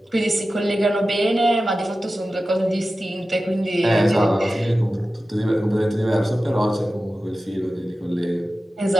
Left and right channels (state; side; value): normal; both; correlation 0.94